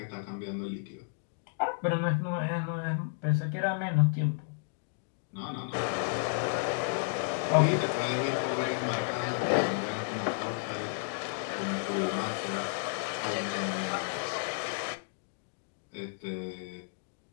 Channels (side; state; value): right; silent; digital silence